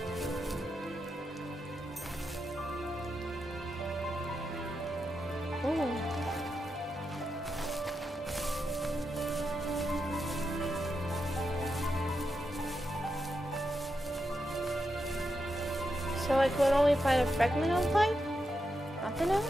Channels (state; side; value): normal; both; correlation 0.86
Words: Oh. So I could only find a fragment of light? Nothing